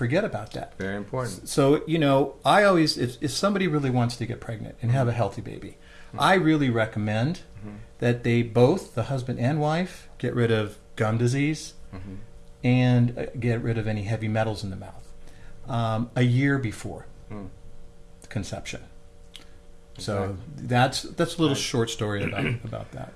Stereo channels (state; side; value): identical; both; correlation 1.00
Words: about that. Very important. So, I always, if somebody really wants to get pregnant and have a healthy baby, I really recommend that they both, the husband and wife, get rid of gum disease and get rid of any heavy metals in the mouth a year before conception. So that's a little short story about that.